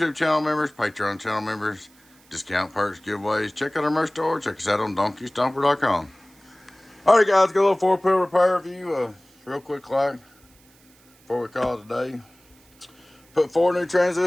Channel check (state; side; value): noise; right; hiss, 30 dB below the sound